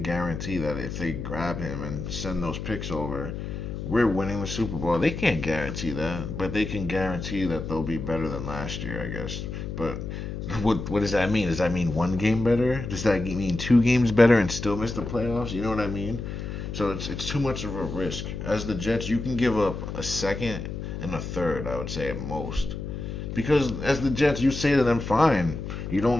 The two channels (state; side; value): noise; left; hum, 6 dB below the sound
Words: guarantee that if they grab him and send those picks over, we're winning the Super Bowl. They can't guarantee that, but they can guarantee that they'll be better than last year, I guess. But what does that mean? Does that mean one game better? Does that mean 2 games better and still miss the playoffs? You know what I mean? So it's too much of a risk. As the Jets, you can give up a second and a third, I would say, at most. Because as the Jets, you say to them, fine, you